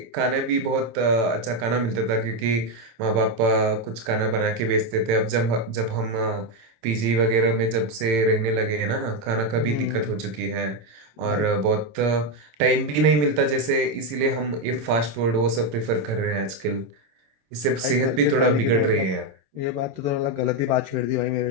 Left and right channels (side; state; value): left; late; 27 ms